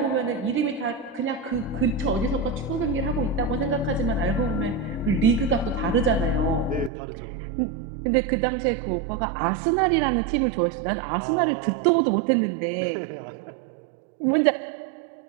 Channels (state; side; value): drops out; left; at 6.9 s